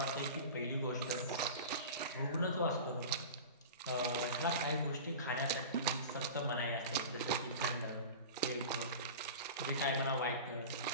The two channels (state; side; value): inverted; both; correlation -0.32